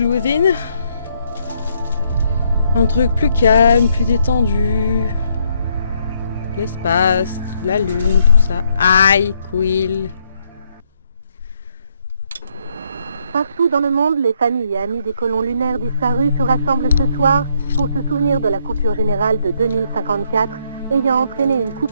Within. Un truc plus calme, plus détendu. L'espace, la lune, tout ça. Aïe, Quill. Partout dans le monde, les familles et amis des colons lunaires disparus se rassemblent ce soir pour se souvenir de la coupure générale de 2054, ayant entraîné une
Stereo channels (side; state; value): both; inverted; correlation -0.72